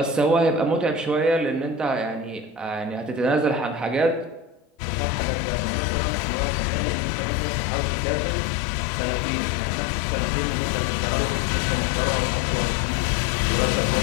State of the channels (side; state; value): right; drops out; at 4.6 s